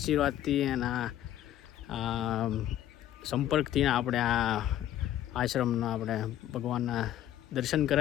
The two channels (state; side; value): quieter; right; 12.1 dB